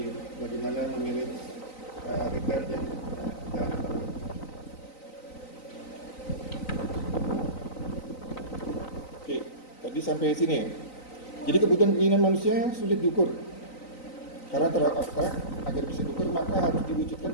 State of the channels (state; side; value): late; right; 3.9 ms